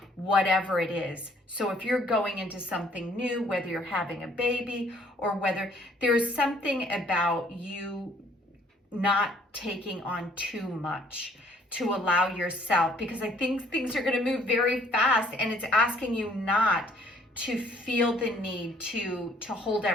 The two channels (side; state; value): both; normal; correlation 0.61